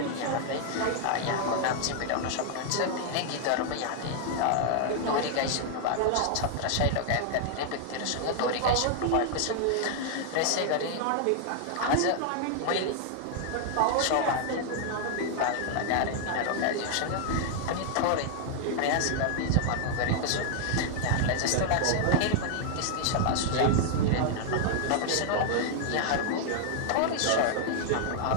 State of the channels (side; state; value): both; different; correlation 0.00